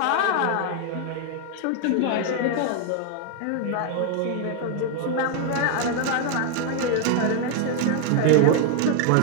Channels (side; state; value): both; different; correlation 0.00